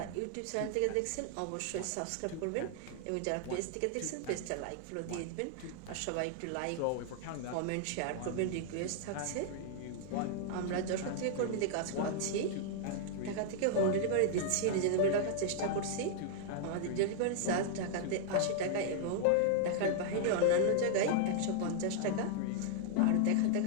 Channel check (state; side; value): different; both; correlation 0.00